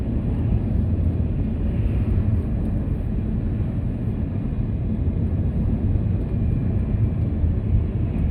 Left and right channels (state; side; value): identical; both; correlation 1.00